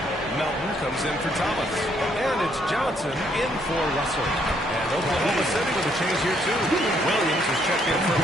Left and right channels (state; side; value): normal; both; correlation 0.70